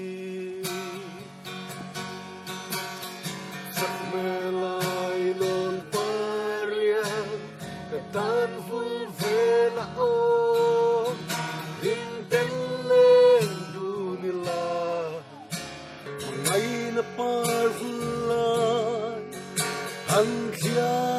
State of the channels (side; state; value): both; identical; correlation 1.00